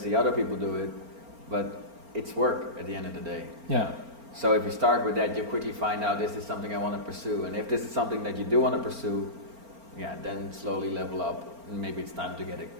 other people do it, but it's work at the end of the day. Yeah. So if you start with that, you'll quickly find out, is this something I want to pursue? And if this is something that you do want to pursue, then slowly level up. Maybe it's time to get a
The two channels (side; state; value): left; late; 4.4 ms